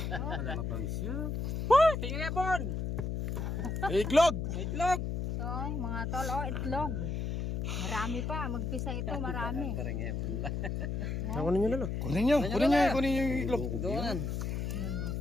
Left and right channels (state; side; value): noise; left; hum, 2 dB below the sound